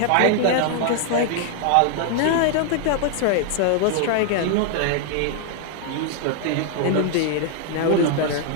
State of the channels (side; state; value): both; different; correlation 0.00